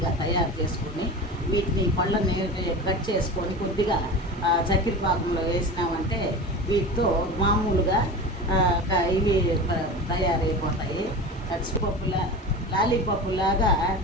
తయారు చేసుకొని వీటిని పళ్ళని కట్ చేసుకొని కొద్దిగా చక్కెర పాకంలో వేసినామంటే వీటితో మామూలుగా ఇవి తయారైపోతాయి. లాలీపప్పులాగా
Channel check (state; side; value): normal; both; correlation 0.30